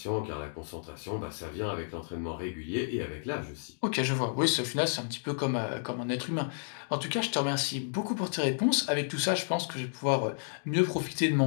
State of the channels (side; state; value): right; silent; digital silence